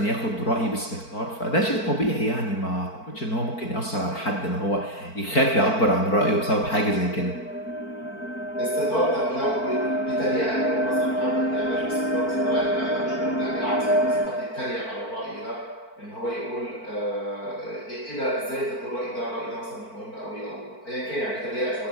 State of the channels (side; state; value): right; late; 4.5 ms